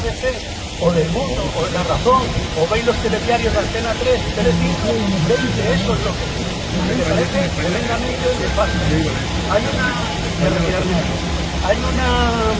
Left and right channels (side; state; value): both; identical; correlation 1.00